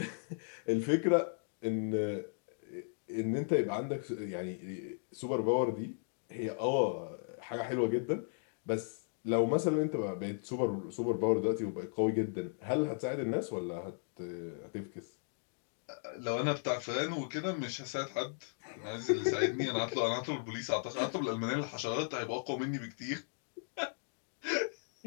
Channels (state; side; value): silent; right; digital silence